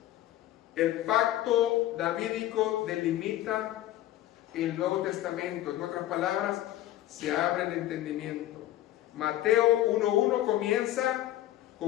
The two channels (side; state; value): right; quieter; 14.1 dB